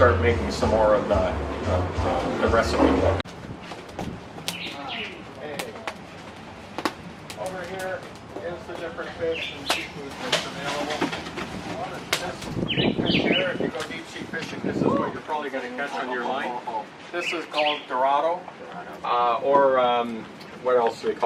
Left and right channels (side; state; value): both; identical; correlation 1.00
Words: making some more of the recipe book. Over here is the different fish and seafood that's available. This big fish here, if you go deep sea fishing, this is what you're probably going to catch on your line. This is called Dorado, or what else do they